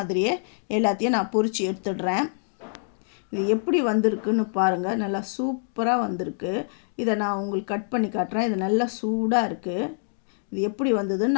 எல்லாத்தையும் நான் பொரித்து எடுத்துடுறேன். இது எப்படி வந்திருக்குன்னு பாருங்கள். நல்லா சூப்பராக வந்திருக்கு. இதை நான் உங்களுக்கு கட் பண்ணி காட்டுறேன். இது நல்லா சூடாக இருக்குது. இது எப்படி வந்ததுன்னு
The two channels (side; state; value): right; silent; digital silence